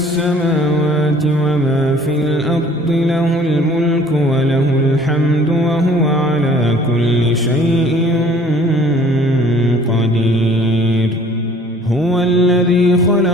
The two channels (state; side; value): normal; both; correlation 0.54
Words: وما في الأرض، له الملك وله الحمد وهو على كل شيء قدير. هو الذي